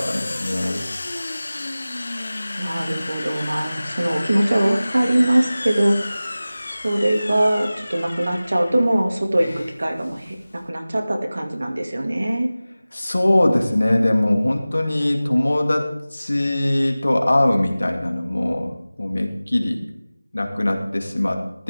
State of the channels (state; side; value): inverted; both; correlation -0.98